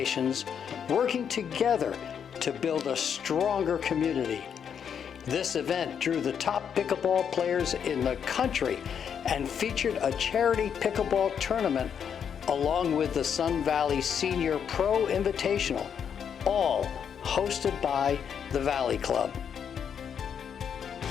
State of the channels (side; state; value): right; quieter; 7.8 dB